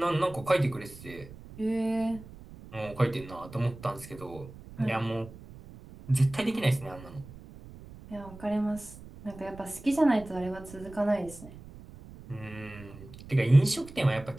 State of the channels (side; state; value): right; noise; rumble, 17 dB below the sound